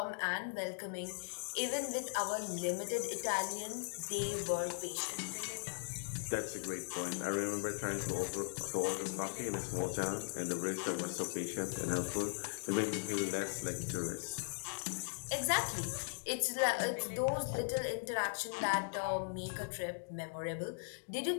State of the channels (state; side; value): silent; right; digital silence